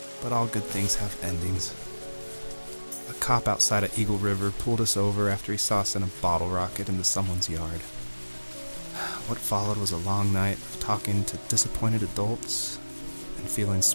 But all good things have endings. A cop outside of Eagle River pulled us over after he saw us send a bottle rocket into someone's yard. What followed was a long night of talking to disappointed adults and feeling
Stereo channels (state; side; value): inverted; both; correlation -1.00